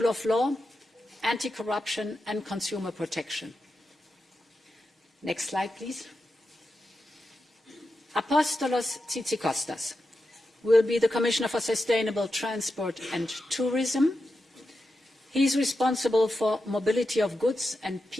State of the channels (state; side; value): normal; both; correlation 0.89